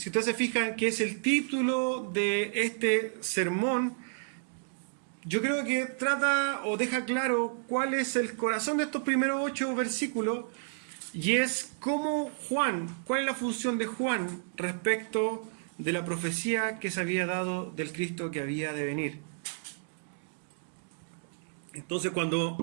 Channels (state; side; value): silent; left; digital silence